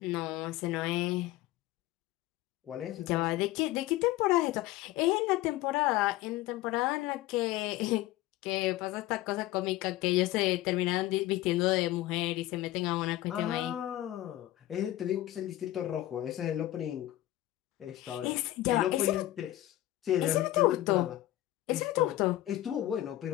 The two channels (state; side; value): quieter; right; 15.5 dB